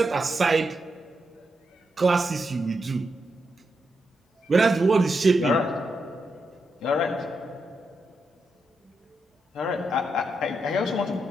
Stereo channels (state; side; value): normal; both; correlation 0.84